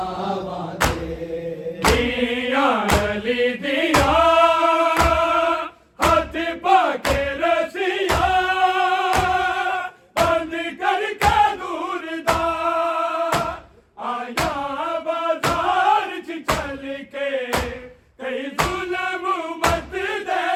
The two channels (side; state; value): both; identical; correlation 1.00